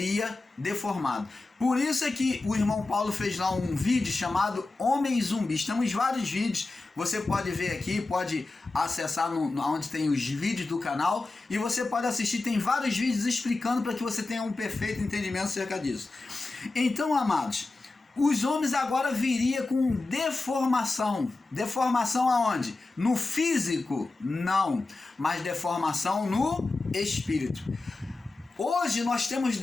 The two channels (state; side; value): quieter; right; 3.3 dB